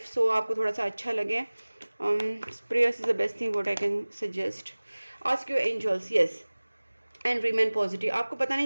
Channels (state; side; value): inverted; both; correlation -1.00